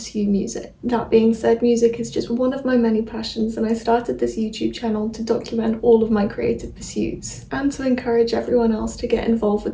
music. That being said, music is just one of my many passions and I started this YouTube channel to document all of my creative pursuits and to encourage everyone else to get involved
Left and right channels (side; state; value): both; identical; correlation 1.00